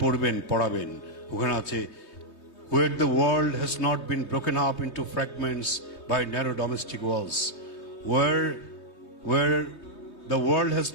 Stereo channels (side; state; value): right; late; 3.2 ms